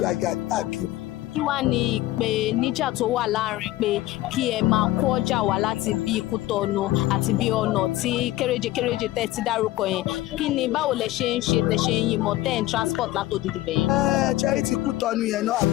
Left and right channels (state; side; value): quieter; right; 16.2 dB